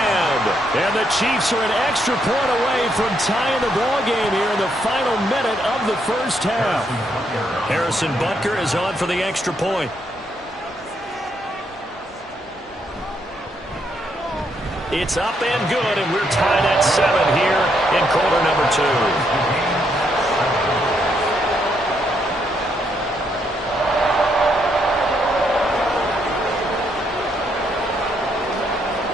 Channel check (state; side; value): normal; both; correlation 0.75